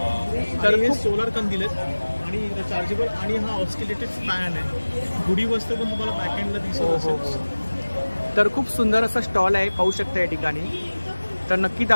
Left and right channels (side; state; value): both; inverted; correlation -1.00